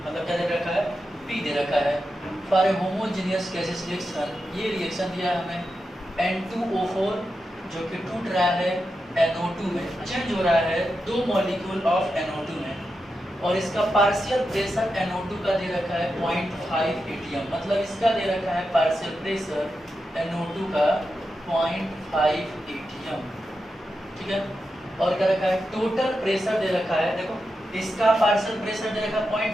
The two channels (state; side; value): normal; both; correlation 0.89